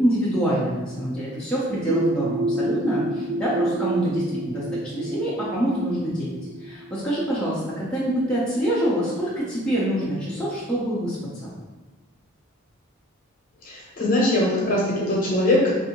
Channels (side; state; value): both; normal; correlation 0.53